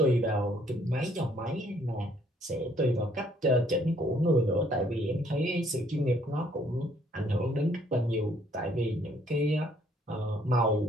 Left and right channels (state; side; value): normal; both; correlation 0.64